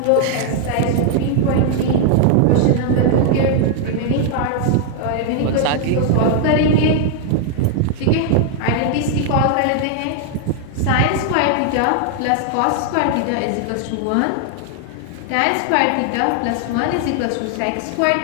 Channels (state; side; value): different; both; correlation 0.00